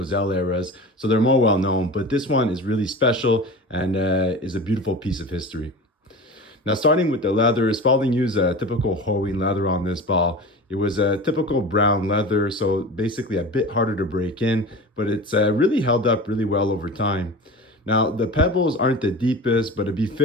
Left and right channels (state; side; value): normal; both; correlation 0.33